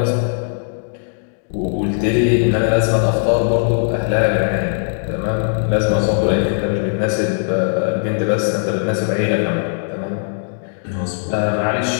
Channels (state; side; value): silent; right; digital silence